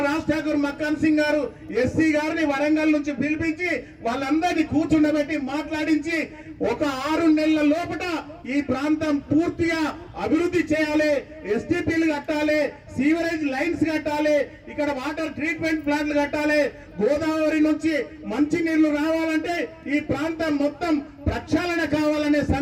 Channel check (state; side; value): identical; both; correlation 1.00